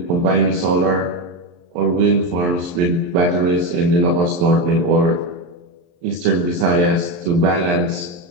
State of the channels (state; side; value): late; left; 23 ms